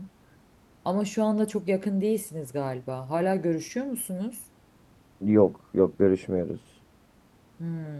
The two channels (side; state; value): both; identical; correlation 1.00